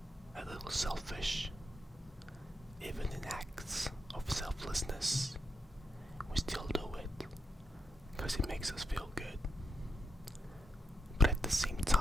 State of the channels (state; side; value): normal; both; correlation 0.83